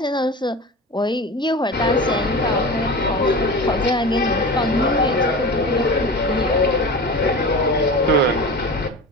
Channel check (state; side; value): normal; both; correlation 0.31